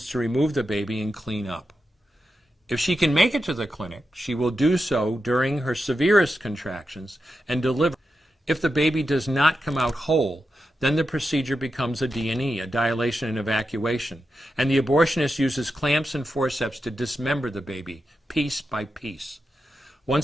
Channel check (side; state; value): both; normal; correlation 0.89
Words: to remove the baby and clean up. If she can make it to the clinic, she will do so during her severest contractions and deliver. If the baby does not come out whole, then the procedure becomes a D&E, a dilation and evacuation, and the abortionist uses clamps and forceps to dismember the baby, piece by piece.